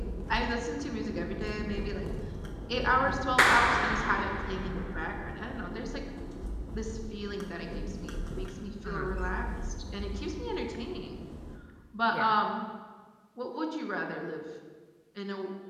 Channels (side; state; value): both; identical; correlation 1.00